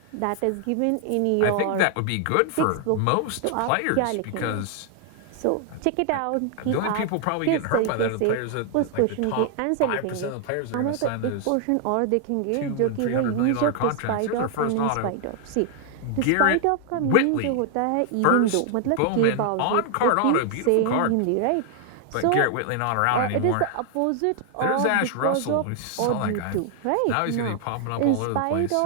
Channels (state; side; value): different; both; correlation 0.00